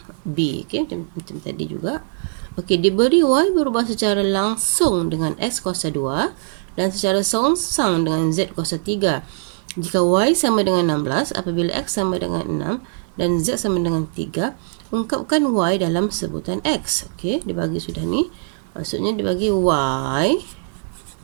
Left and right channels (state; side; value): silent; left; 64 dB below the other